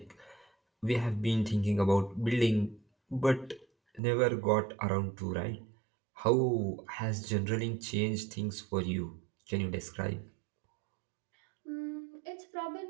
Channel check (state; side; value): drops out; left; at 4.0 s